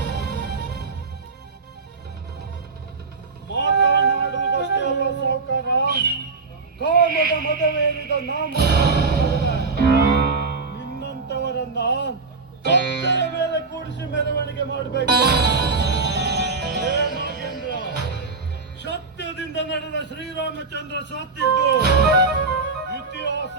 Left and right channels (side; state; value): left; quieter; 4.2 dB